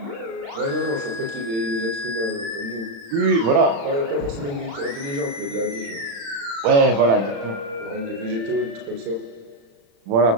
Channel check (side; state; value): left; late; 35 ms